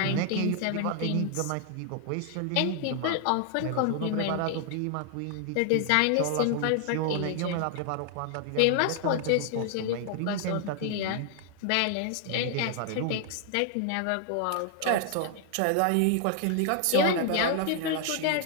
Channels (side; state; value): both; different; correlation 0.00